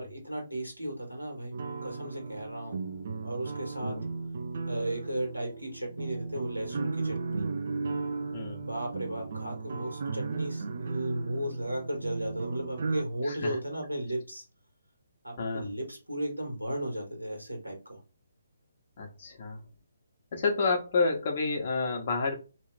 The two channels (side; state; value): both; inverted; correlation -0.81